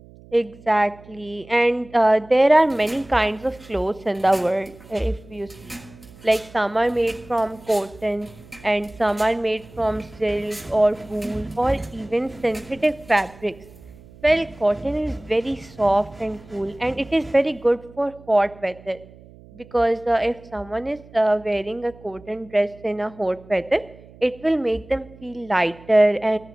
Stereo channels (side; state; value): right; noise; hum, 22 dB below the sound